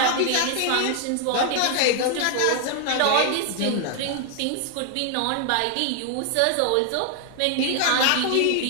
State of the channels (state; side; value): different; both; correlation 0.00